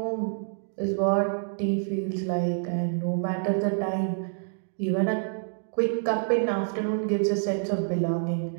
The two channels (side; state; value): left; silent; digital silence